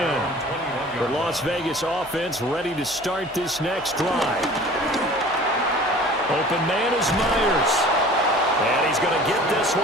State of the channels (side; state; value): left; noise; hum, 24 dB below the sound